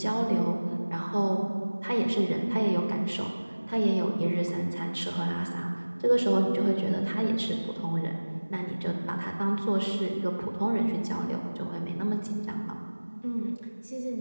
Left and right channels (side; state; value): both; inverted; correlation -1.00